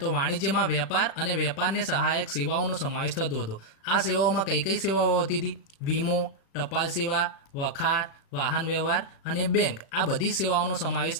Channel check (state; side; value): late; right; 36 ms